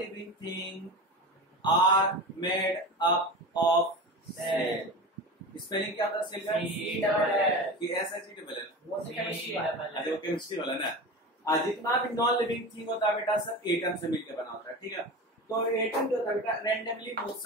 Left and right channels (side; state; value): both; normal; correlation 0.29